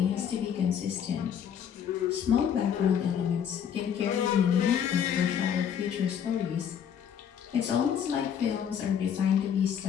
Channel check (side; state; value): right; quieter; 8.4 dB